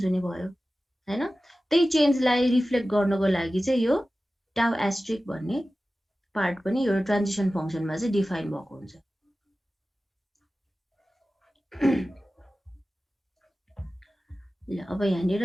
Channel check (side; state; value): both; normal; correlation 0.95